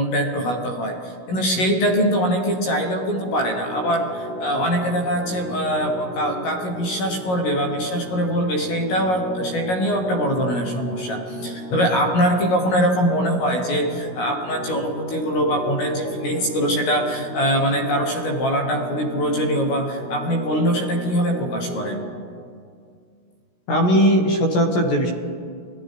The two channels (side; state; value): right; late; 16 ms